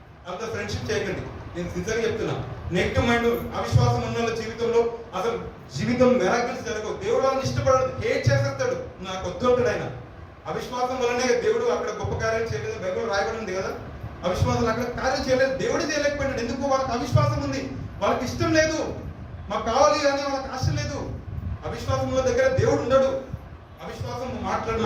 అసలు ఫ్రెండ్షిప్ చేయకండి. నేను సిన్సియర్గా చెప్తున్నా. నెగిటివ్ మైండ్, అవిశ్వాసం ఉన్న వాళ్ళ జీవితంలో అసలు జీవితం మెరాకిల్స్ జరగవు. దేవుడు వాళ్ళని ఇష్టపడదు, హేట్ చేసేస్తాడు. నాకు వద్దుంటాడు ఆయన. అవిశ్వాసం వల్లనే దేవుడు అక్కడ గొప్ప కార్యాలు చేయలేదు. బైబిల్ రాయబడింది కదా, అవిశ్వాసం అక్కడ కార్యం చేయలేదు, దేవుడు చేయలేకపోయాడు. ఎందుకు? వాళ్ళకి అవిశ్వాసం ఉంది, వాళ్ళకి ఇష్టం లేదు, మాకు కావాలి అని వాళ్ళకి ఆశ లేదు. అవిశ్వాసం ఉన్న దగ్గర దేవుడు ఉండడు. అవిశ్వాసం మాట్లాడే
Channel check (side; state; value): both; identical; correlation 1.00